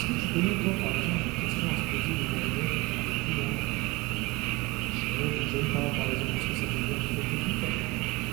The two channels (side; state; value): left; quieter; 23.5 dB